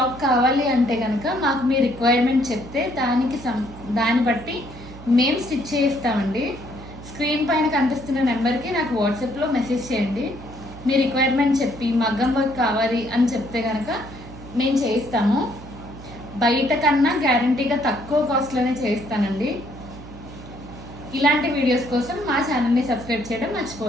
కావాలి అంటే కనుక మాకు మీ రిక్వైర్మెంట్ చెప్తే దాన్ని బట్టి మేము స్టిచ్ చేయిస్తామండి. స్క్రీన్ పైన కనిపిస్తున్న నెంబర్కి నాకు వాట్సాప్లో మెసేజ్ చేయండి. మీ రిక్వైర్మెంట్ చెప్పి మగ్గం వర్క్ కావాలి అని చెప్తే కనుక మేము చేయిస్తాము. బయట కన్నా గ్యారంటీగా తక్కువ కాస్ట్లోనే చేయిస్తానండి. ఇలాంటి వీడియోస్ కోసం మా ఛానల్ని సబ్స్క్రైబ్ చేయడం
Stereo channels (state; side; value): noise; right; hum, 15 dB below the sound